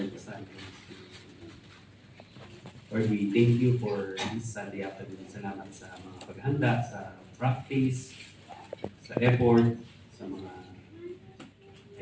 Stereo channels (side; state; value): both; identical; correlation 1.00